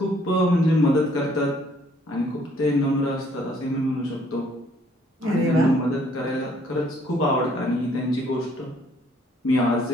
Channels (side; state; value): both; normal; correlation 0.63